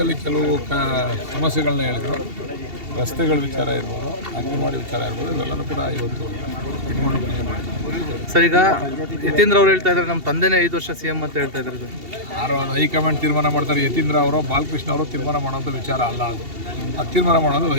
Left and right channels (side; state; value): left; late; 2.7 ms